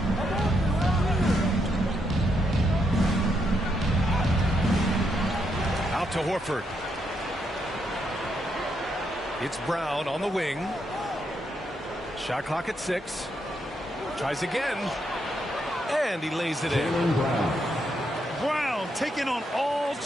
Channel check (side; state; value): both; normal; correlation 0.79